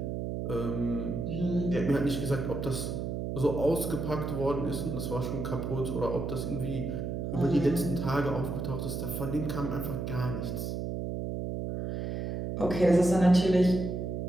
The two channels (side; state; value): right; noise; hum, 3 dB below the sound